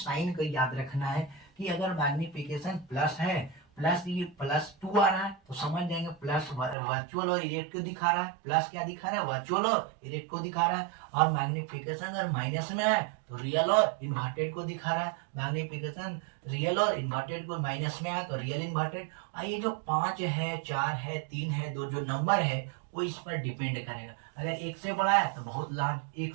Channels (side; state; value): left; drops out; at 6.8 s